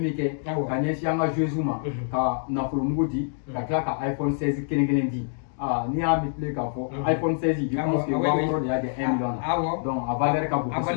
kɛ ka ɲɛsin an ka joueurs ma ka nafolo mugu di ka tila ka iPhone 16 kelen kelen di n'i y'a multiplier k'a fɔ iPhone 16 je pense que waa wɔɔrɔ de y'a di 1 million na donc a valeur ka bon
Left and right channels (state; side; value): silent; right; digital silence